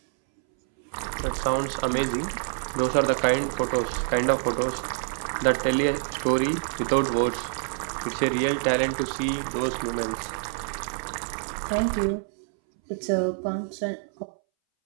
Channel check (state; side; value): silent; left; 61 dB below the other